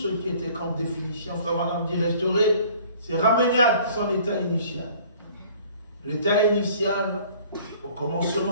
qui était comme définition. Frère Madame dit restaurer, c'est ramener à son état initial. L'état initial au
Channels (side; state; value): both; inverted; correlation -0.52